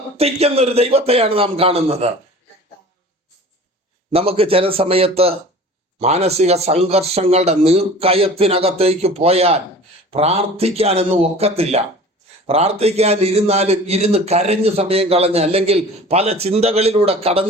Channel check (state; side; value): normal; both; correlation 0.42